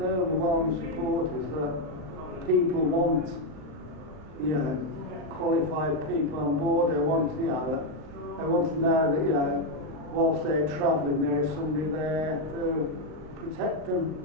support is that people want, qualified people on board. They want, they want to know that, whilst they're travelling, there is somebody there to protect them.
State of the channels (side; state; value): left; late; 38 ms